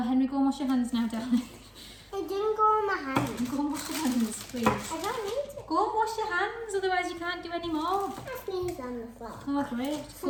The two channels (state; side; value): identical; both; correlation 1.00